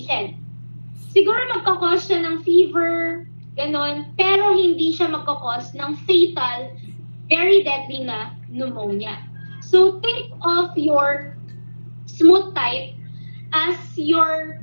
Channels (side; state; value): both; inverted; correlation -1.00